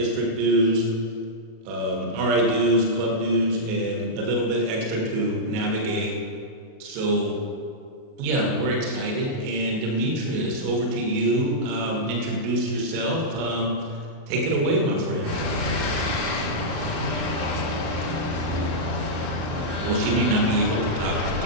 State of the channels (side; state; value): left; late; 37 ms